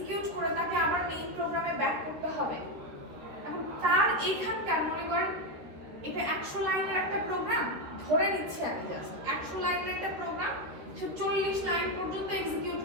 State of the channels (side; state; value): left; late; 13 ms